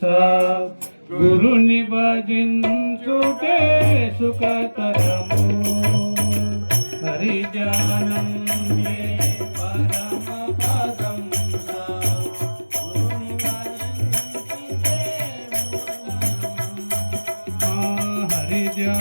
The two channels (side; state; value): both; inverted; correlation -1.00